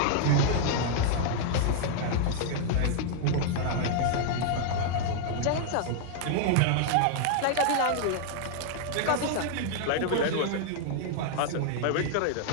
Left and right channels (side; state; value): both; different; correlation -0.01